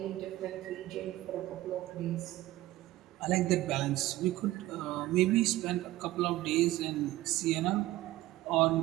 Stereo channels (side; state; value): left; quieter; 16.5 dB